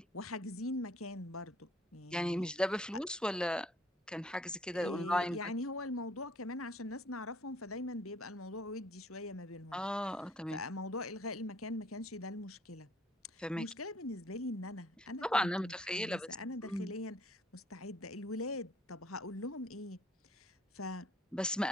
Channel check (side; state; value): both; normal; correlation 0.62